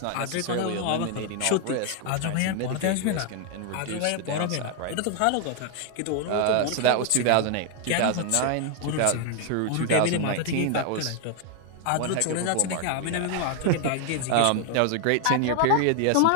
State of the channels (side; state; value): both; different; correlation 0.00